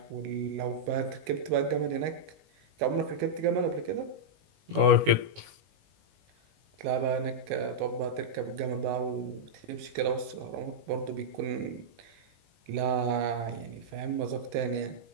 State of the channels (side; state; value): left; late; 19 ms